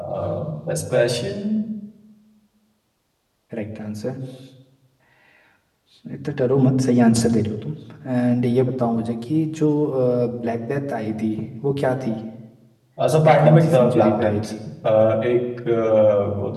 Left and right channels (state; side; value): identical; both; correlation 1.00